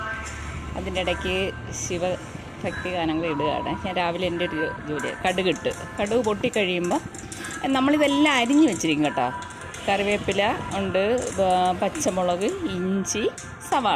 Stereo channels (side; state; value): both; identical; correlation 1.00